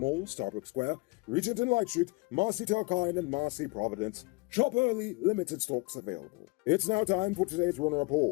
Starbucks Square, Regent and Light Street, Marcy Telkine, and Marcy Providence. Shop early, limited stocks available. It's now time for today's Runner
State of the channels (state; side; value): quieter; right; 26.9 dB